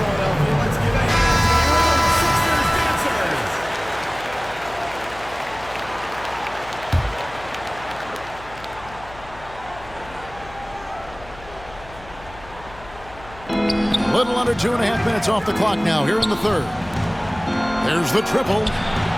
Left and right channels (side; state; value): left; noise; hum, 19 dB below the sound